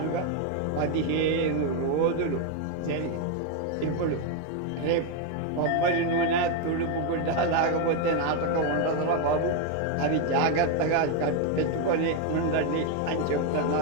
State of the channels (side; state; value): both; different; correlation 0.01